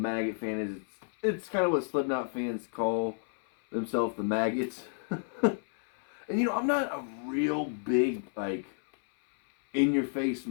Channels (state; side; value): silent; right; 57 dB below the other